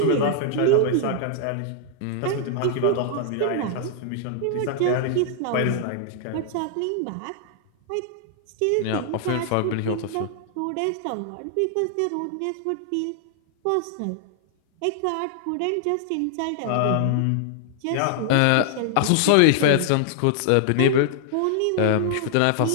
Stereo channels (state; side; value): different; both; correlation 0.00